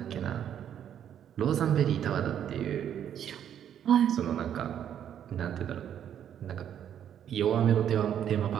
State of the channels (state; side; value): quieter; left; 9.6 dB